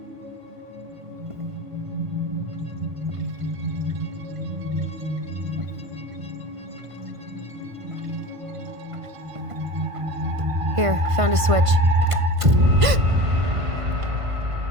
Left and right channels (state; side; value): late; left; 1.5 ms